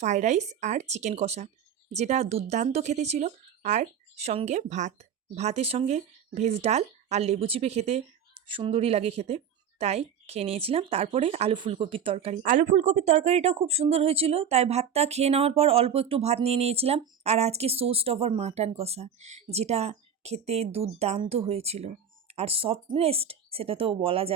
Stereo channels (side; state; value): left; quieter; 7.5 dB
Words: ফ্রাইড রাইস আর চিকেন কষা, যেটা দুর্দান্ত খেতে ছিল। আর সঙ্গে ভাত, ভাতের সঙ্গে ভেজ ডাল আর লেবু চিপে খেতে সুন্দরই লাগে খেতে, তাই খেয়ে নিয়েছিলাম। তারপরে আলু ফুলকপির তরকারি, আলু ফুলকপির তরকারিটাও খুব সুন্দর হয়েছিল, তাই ভাতটা খেয়ে নেওয়ার পর অল্প একটু ভাত নিয়ে নিয়েছিলাম। আর আজকে সোস্ট ওভার মাটন কষা, যেটা খেতে দুর্দান্ত হয়েছিল। আর সফটনেস্ট সেটা তো বলা